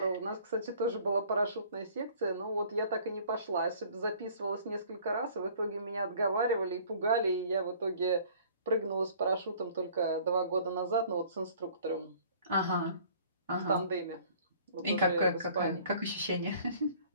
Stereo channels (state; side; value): inverted; both; correlation -0.53